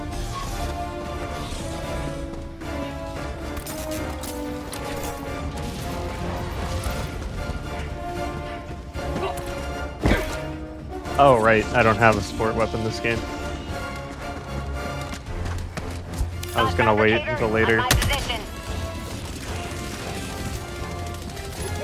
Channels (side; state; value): both; identical; correlation 1.00